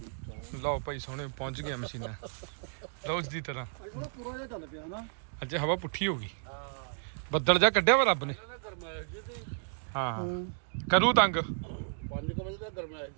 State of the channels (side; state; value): left; silent; digital silence